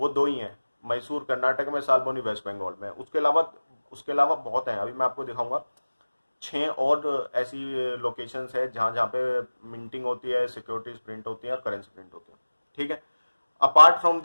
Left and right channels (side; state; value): both; inverted; correlation -1.00